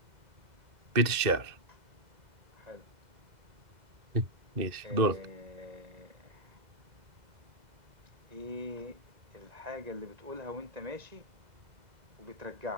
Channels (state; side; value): late; left; 2.0 ms